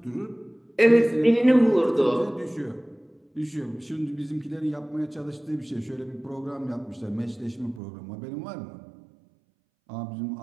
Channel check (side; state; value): left; drops out; at 7.8 s